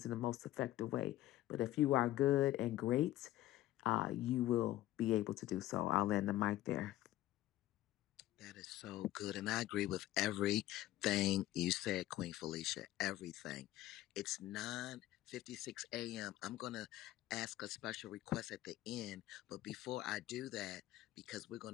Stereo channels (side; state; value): right; quieter; 14.8 dB